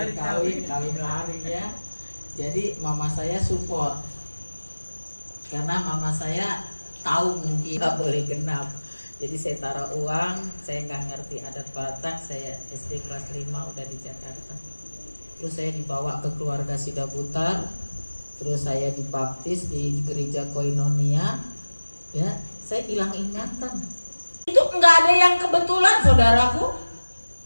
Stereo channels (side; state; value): both; inverted; correlation -1.00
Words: kawin lari ya. Jadi mama saya support karena mama saya tahu mungkin nggak boleh genap. Jadi saya taruh uang, saya nggak ngerti adat Batak, saya SD kelas 5 udah di Jakarta. Terus saya dibawa ke keluarga Sidabutar, terus saya dibaptis di gereja Koinonia, ya saya hilang ingatan. Itu nggak ada yang kebetulan saudaraku.